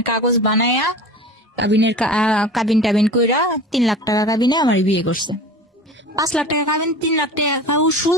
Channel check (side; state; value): both; normal; correlation 0.37